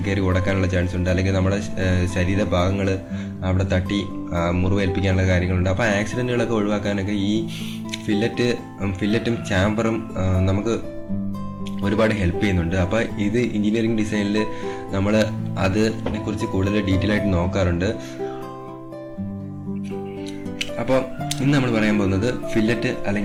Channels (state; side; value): identical; both; correlation 1.00